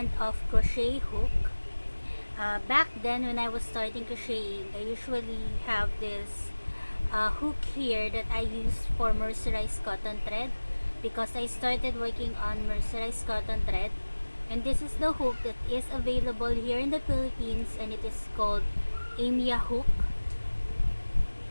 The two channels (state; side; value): inverted; both; correlation -1.00